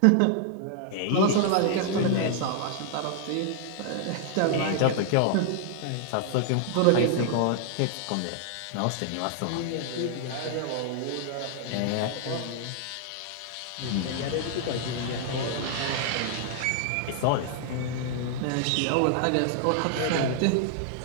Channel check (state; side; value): different; both; correlation 0.00